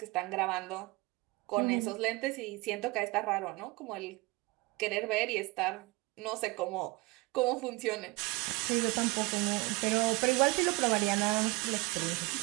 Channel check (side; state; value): left; quieter; 24.5 dB